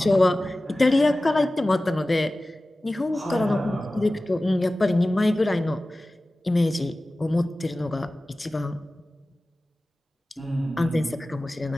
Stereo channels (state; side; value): normal; both; correlation 0.96